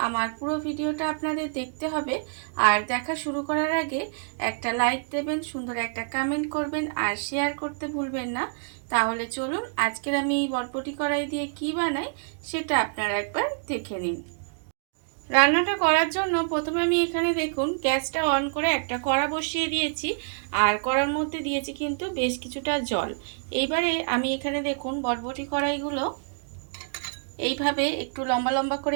আমার পুরো ভিডিওটা আপনাদের দেখতে হবে। আর দেখা শুরু করার আগে একটা লাইক দেবেন, সুন্দর একটা কমেন্ট করবেন আর শেয়ার করতে ভুলবেন না। তাহলে চলুন আজকের আমি এই বটবটি কড়াই দিয়ে কি বানাই সেটা আপনারা একবার দেখে নিন। রান্নাটা করার জন্য প্রথমে আমি এখানে দেখুন গ্যাসটা অন করে একটা কড়া বসিয়ে দিয়েছি আর কড়ার মধ্যে দিয়েছি কিন্তু বেশ কিছুটা জল। এইবারে আমি এখানে দেখুন বটবটি কড়াইগুলো এইভাবে একটু লম্বা লম্বা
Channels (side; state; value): left; silent; digital silence